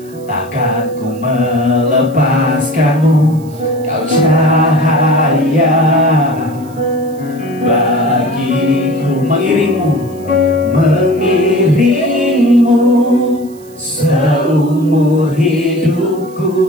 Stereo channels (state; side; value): noise; right; hiss, 26 dB below the sound